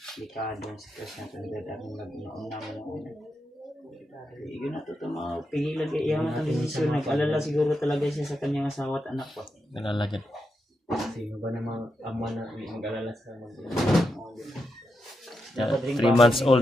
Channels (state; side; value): normal; both; correlation 0.85